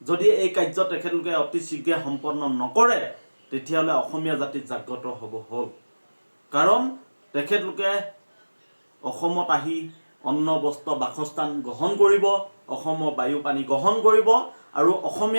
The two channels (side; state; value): both; inverted; correlation -1.00